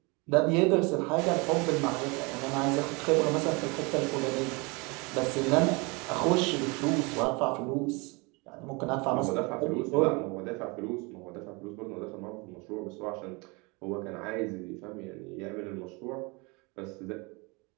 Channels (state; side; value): quieter; left; 28.1 dB